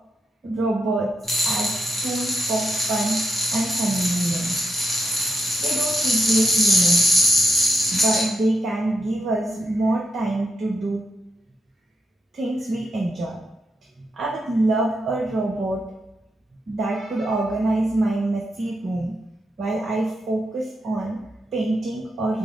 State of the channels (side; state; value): both; normal; correlation 0.82